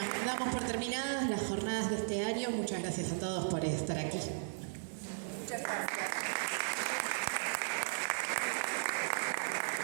damos por terminadas las jornadas de este año. Muchas gracias a todos por estar aquí. Muchas gracias.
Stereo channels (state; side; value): silent; left; digital silence